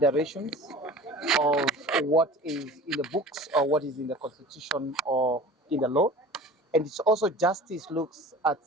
of what is in the books or what is in the constitution or in the law. And it's also justice looks at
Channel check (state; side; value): normal; both; correlation 0.39